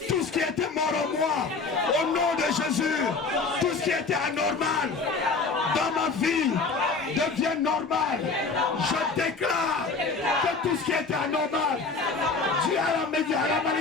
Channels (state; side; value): quieter; right; 4.3 dB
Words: tout ce qui était mort en moi. Au nom de Jésus, tout ce qui était anormal dans ma vie devient normal. Je déclare que tout ce qui était anormal, dû à la